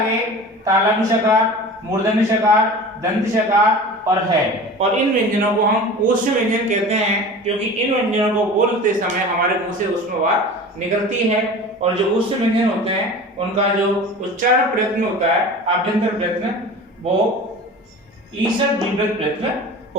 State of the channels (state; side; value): normal; both; correlation 0.37